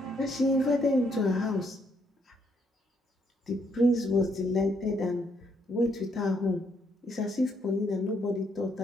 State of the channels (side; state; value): both; normal; correlation 0.72